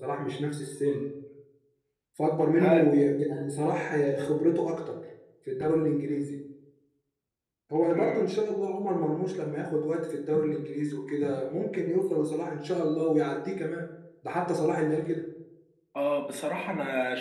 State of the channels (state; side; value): identical; both; correlation 1.00